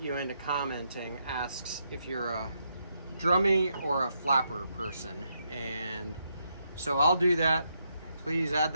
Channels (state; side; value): inverted; both; correlation -0.79